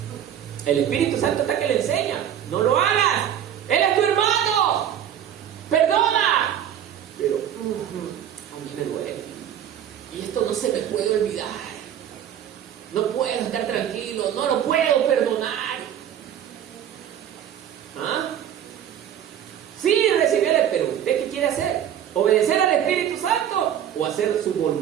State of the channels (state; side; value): quieter; left; 10.0 dB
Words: El Espíritu Santo está que le enseña. No lo hagas. Él es tu hermano. Perdona. Pero a mí me duele. Y esto no se me puede olvidar. No puedo estar tranquilo. No lo puedo perdonar. Sí, recibirle, pero ¿usted qué quiere hacer? ¿Obedecer al Espíritu Santo o hacer su